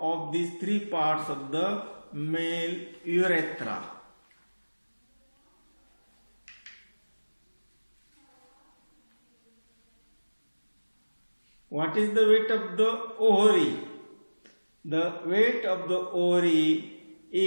of these three parts of the male urethra. What is the weight of the ovary? The weight of the ovary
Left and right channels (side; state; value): both; inverted; correlation -1.00